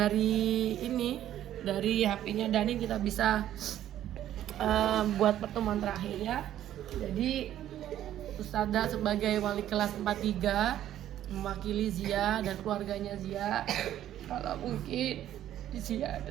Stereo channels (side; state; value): left; quieter; 12.0 dB